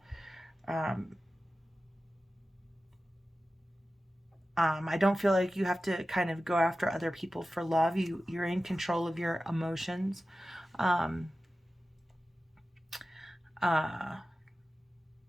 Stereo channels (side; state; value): both; normal; correlation 0.94